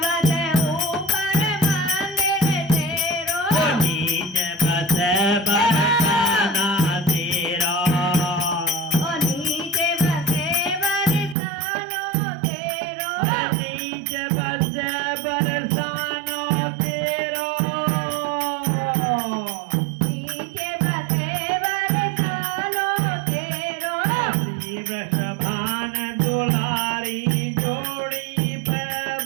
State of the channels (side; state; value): left; drops out; at 11.4 s